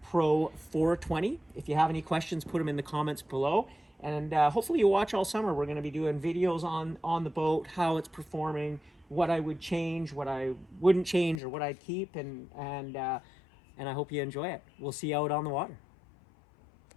Pro 420. If you have any questions, put them in the comments below, and hopefully you watch all summer. We're going to be doing videos on the boat, how it's performing, what I would change, what I wouldn't change, or what I'd keep, and I hope you enjoy it. We'll see you out on the water.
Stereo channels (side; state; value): right; drops out; at 11.4 s